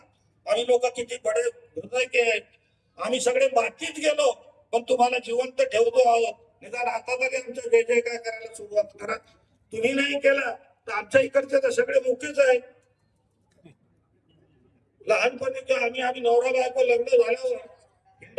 आम्ही लोक किती बडे हृदय के आम्ही सगळे मातीत गेलो पण तुम्हाला जिवंत ठेवतो आहोत. निदान आता तरी आमच्या जय जय काय करायला सुरुवात करा. तुम्ही नाही केला तर आमच्या इकडचे तर सगळे मुकेच आहेत. लहानपणी आम्ही नवरा बायको लग्न झाल्यावर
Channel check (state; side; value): identical; both; correlation 1.00